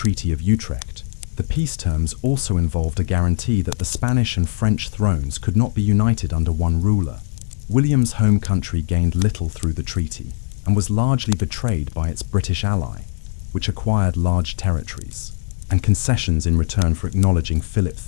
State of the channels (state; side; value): silent; right; 66 dB below the other